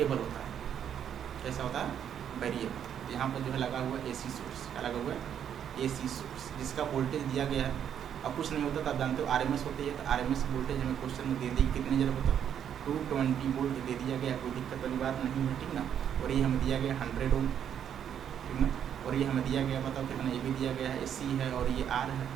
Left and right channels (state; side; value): quieter; left; 9.0 dB